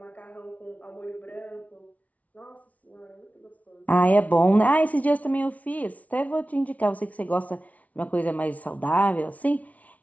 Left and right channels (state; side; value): late; right; 0.069 ms